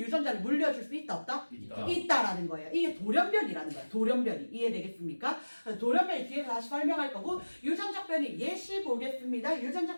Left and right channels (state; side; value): inverted; both; correlation -1.00